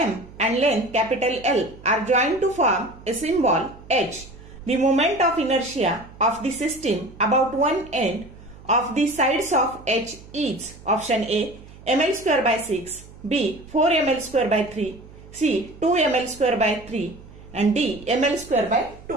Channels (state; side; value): noise; right; hum, 20 dB below the sound